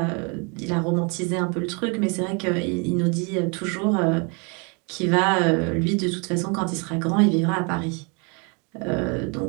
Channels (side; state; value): left; quieter; 33.2 dB